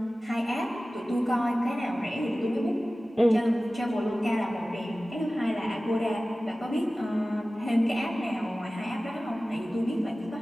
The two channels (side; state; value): both; normal; correlation 0.96